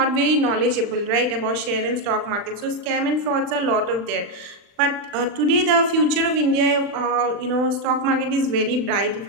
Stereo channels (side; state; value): left; late; 39 ms